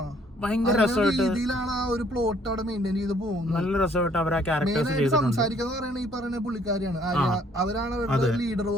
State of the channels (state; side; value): normal; both; correlation 0.62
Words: ഭയങ്കര രസമായിട്ട് രീതിയിലാണ് ആ ഒരു പ്ലോട്ട് അവിടെ മെയിൻറ്റെയിൻ ചെയ്ത് പോകുന്നത്. നല്ല രസമായിട്ട് അവർ ആ ക്യാരക്ടേഴ്സ് സംസാരിക്കാന്ന് പറയുന്നത് ഈ പറയുന്ന പുള്ളിക്കാരിയാണ്. അവരാണ് അവരുടെ ലീഡർ